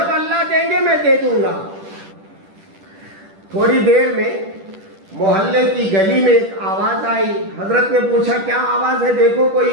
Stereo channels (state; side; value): late; left; 10 ms